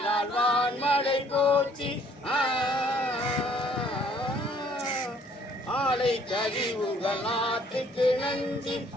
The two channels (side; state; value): both; normal; correlation 0.61